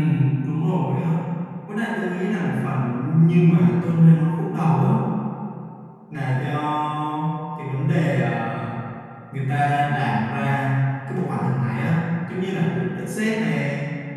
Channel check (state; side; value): identical; both; correlation 1.00